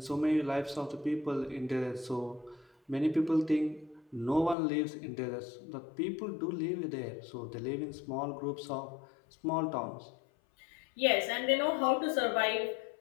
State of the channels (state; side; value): drops out; right; at 4.5 s